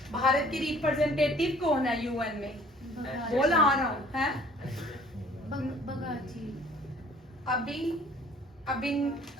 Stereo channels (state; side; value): normal; both; correlation 0.54